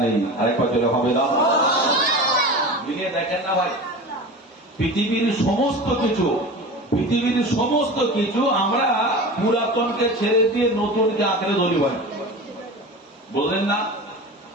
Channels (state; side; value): normal; both; correlation 0.32